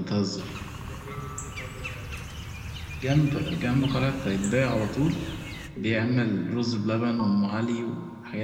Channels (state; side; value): identical; both; correlation 1.00